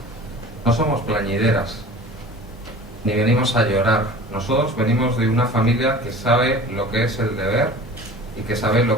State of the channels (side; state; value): both; normal; correlation 0.41